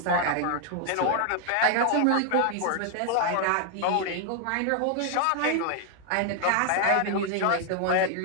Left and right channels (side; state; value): both; different; correlation 0.00